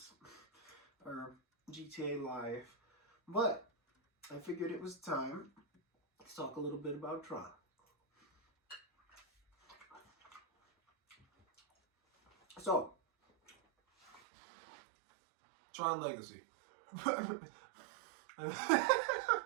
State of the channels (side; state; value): left; drops out; at 14.2 s